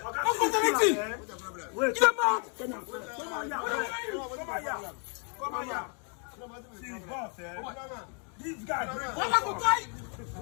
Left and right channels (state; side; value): quieter; right; 39.6 dB